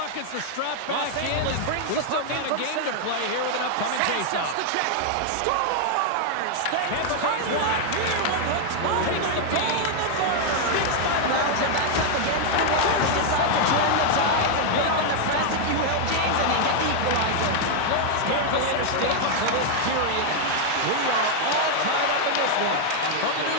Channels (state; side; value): different; both; correlation 0.00